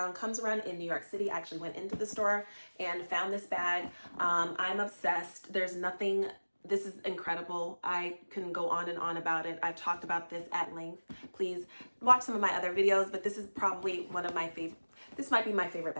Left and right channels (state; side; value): inverted; both; correlation -1.00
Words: around in New York City. I actually went into the store and found this bag. I'm obsessed. There's nothing, this is incredible. I can go on and on about it. I've talked about this at length. Please watch some of my other videos, but this is probably one of my favorite. This might be my favorite